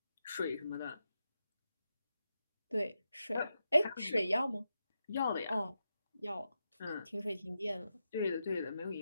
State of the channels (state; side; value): inverted; both; correlation -0.88